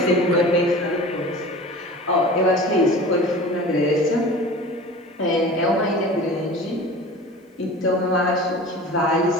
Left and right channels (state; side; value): normal; both; correlation 0.38